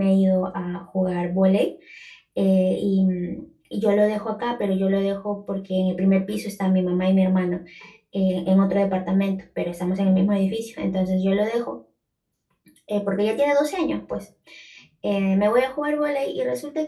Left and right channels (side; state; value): both; identical; correlation 1.00